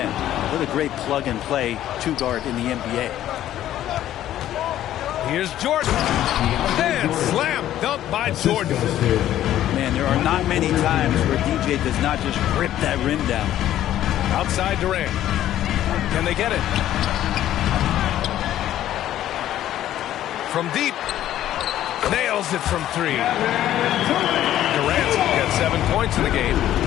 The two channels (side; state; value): right; quieter; 12.5 dB